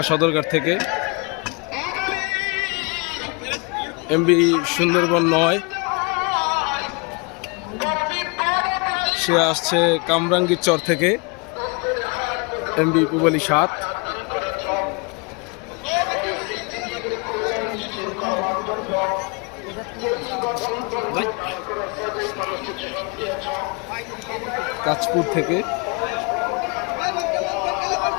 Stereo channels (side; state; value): right; quieter; 30.9 dB